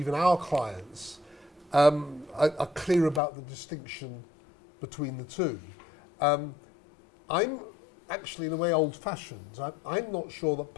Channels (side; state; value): right; drops out; at 3.2 s